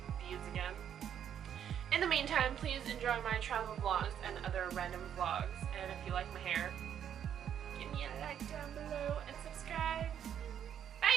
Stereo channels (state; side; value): quieter; left; 9.2 dB